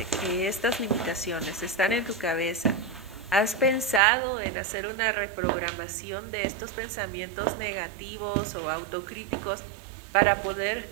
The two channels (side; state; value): left; drops out; at 4.0 s